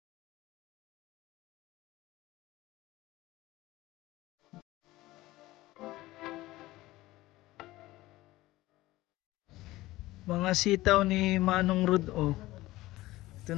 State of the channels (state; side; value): quieter; right; 17.9 dB